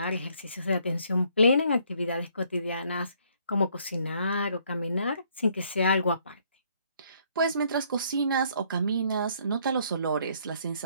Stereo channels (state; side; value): inverted; both; correlation -0.66